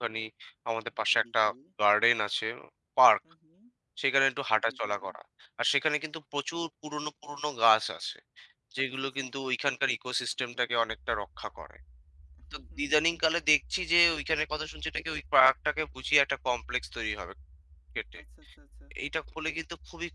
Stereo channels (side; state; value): both; identical; correlation 1.00